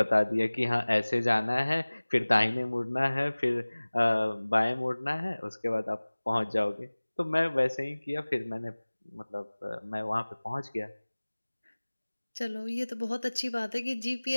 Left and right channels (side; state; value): both; inverted; correlation -1.00